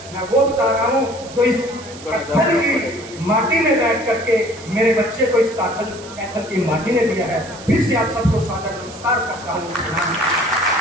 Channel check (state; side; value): noise; right; hiss, 17 dB below the sound